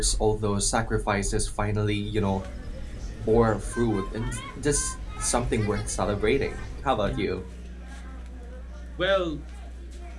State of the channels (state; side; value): identical; both; correlation 1.00